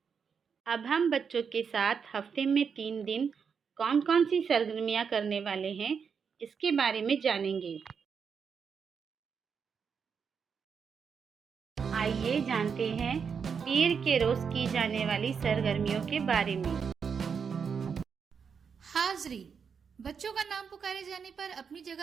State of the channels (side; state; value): left; quieter; 6.4 dB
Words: अब हम बच्चों के साथ हफ्ते में 3 दिन कौन कौन सी सरगर्मियाँ करने वाले हैं, इसके बारे में जानेंगे। आइए जानते हैं पीर के रोज़ की जाने वाली सरगर्मियों के बारे में। हाज़री, बच्चों का नाम पुकारे जाने पर अपनी